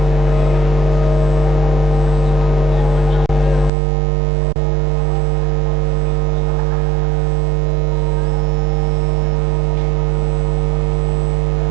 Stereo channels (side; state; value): left; drops out; at 3.7 s